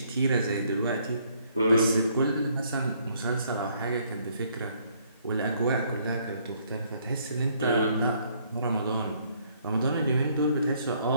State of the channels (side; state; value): both; inverted; correlation -0.67